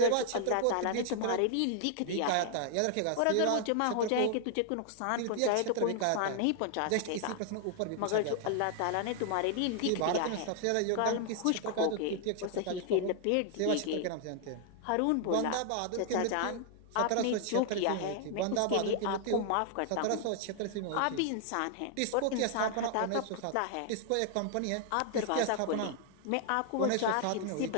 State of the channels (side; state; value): both; different; correlation 0.00